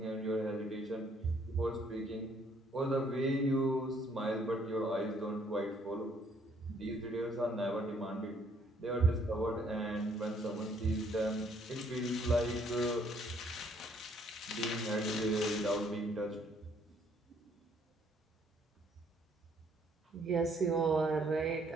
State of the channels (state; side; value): normal; both; correlation 0.65